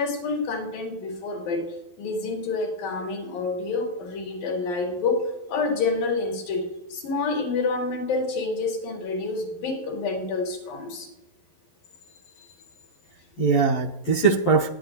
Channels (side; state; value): right; late; 11 ms